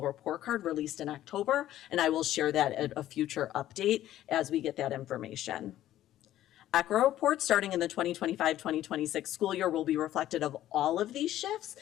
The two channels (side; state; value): right; quieter; 13.2 dB